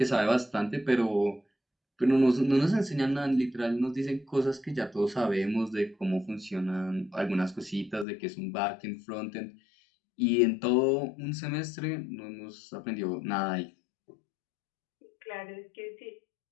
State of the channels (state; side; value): drops out; right; at 8.1 s